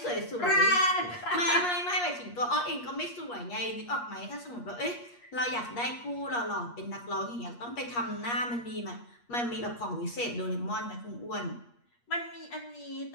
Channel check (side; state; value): right; late; 8.4 ms